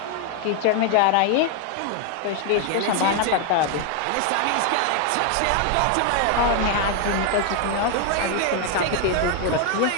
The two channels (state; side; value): different; both; correlation 0.00